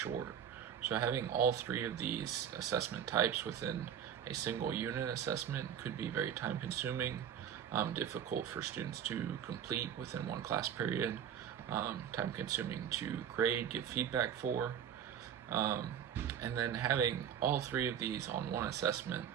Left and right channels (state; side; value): quieter; left; 8.8 dB